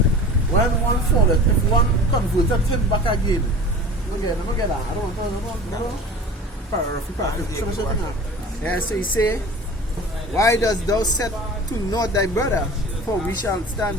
one falleth, if one converted him back again, look at that. I don't know. Yeah, so he say, why dost thou set to naught thy brother? For we shall stand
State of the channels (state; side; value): normal; both; correlation 0.39